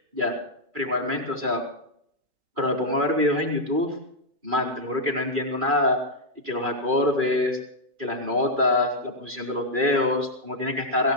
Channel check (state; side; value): late; left; 2.4 ms